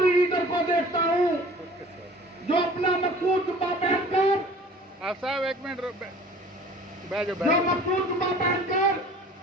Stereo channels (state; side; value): normal; both; correlation 0.47